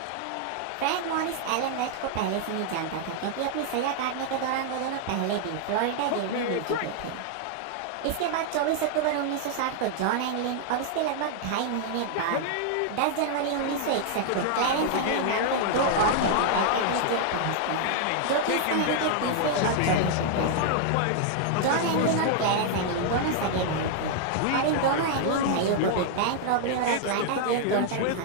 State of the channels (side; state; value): both; different; correlation 0.00